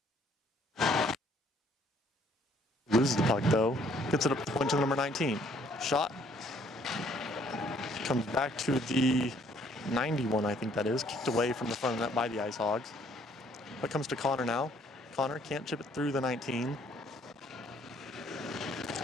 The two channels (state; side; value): normal; both; correlation 0.63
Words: Loses the puck though. Gets it up the point to number 19. Shot. Comes back to the 91, I think that is. Kicked away from the front of the net by the Ice Hogs. Puck comes to Connor now. Connor can't chip it through the 19.